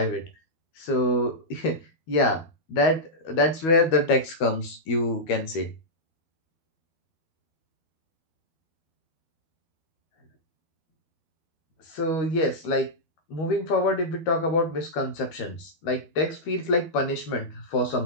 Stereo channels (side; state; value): right; late; 12 ms